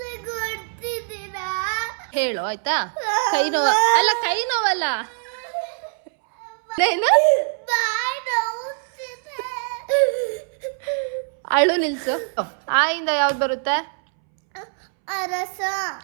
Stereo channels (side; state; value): left; silent; 63 dB below the other